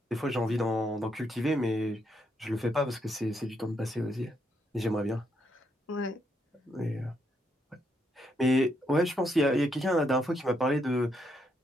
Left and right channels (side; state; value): both; normal; correlation 0.77